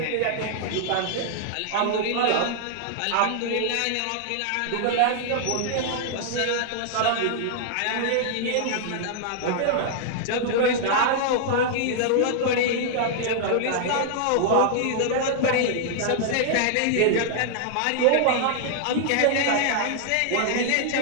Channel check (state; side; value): different; both; correlation 0.00